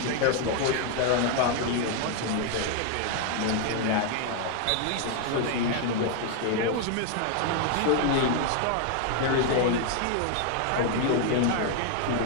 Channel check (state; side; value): different; both; correlation 0.00